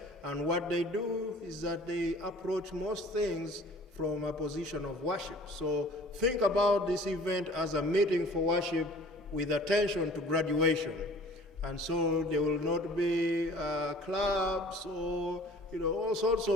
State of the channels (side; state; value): both; normal; correlation 0.49